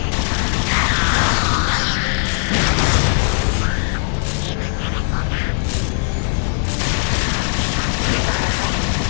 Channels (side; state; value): right; silent; digital silence